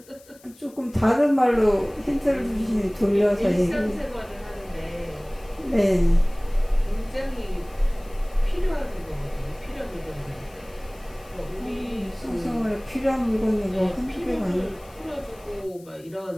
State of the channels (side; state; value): left; noise; hiss, 26 dB below the sound